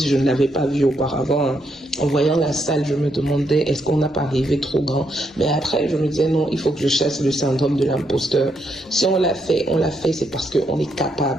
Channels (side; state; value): both; normal; correlation 0.78